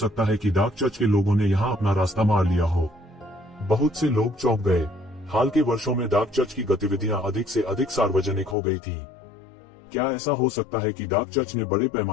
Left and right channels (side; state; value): right; drops out; at 8.6 s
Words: है कि डार्क चर्च के लोगों ने यहाँ अपना रास्ता मार लिया हो? बहुत से लोग चौंक गए। हाल के वर्षों में डार्क चर्च की गतिविधियां अधिक से अधिक सार्वजनिक हो गई थीं। क्या ऐसा हो सकता है कि डार्क चर्च ने बड़े